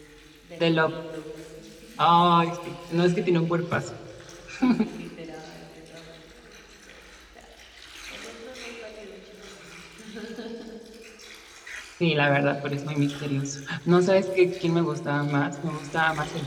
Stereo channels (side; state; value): both; identical; correlation 1.00